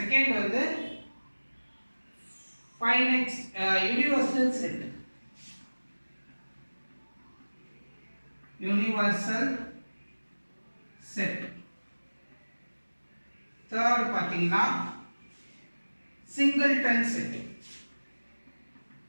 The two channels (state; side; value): inverted; both; correlation -1.00